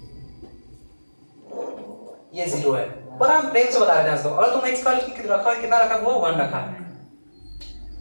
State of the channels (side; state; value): both; inverted; correlation -1.00